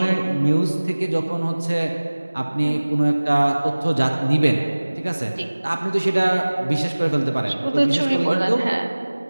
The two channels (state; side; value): inverted; both; correlation -1.00